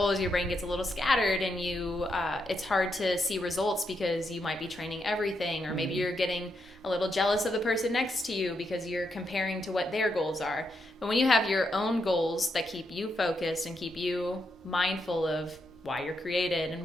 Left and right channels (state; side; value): normal; both; correlation 0.81